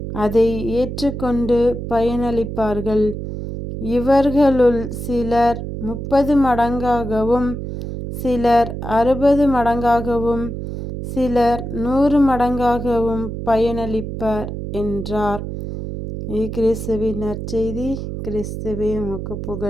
அதை ஏற்றுக்கொண்டு பயனளிப்பார்கள். இவர்களுள் சிலர் 30 மடங்காகவும், சிலர் 60 மடங்காகவும், சிலர் 100 மடங்காகவும் பயனளிப்பர் என்றார். கிறிஸ்துவின் நற்செய்தி. கிறிஸ்துவே உமக்கு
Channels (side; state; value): right; noise; hum, 6 dB below the sound